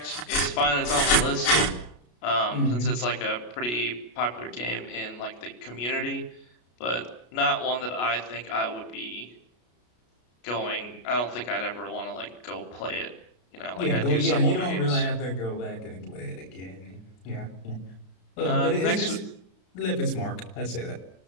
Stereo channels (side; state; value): right; late; 33 ms